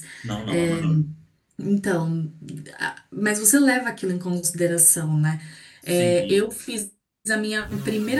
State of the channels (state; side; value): identical; both; correlation 1.00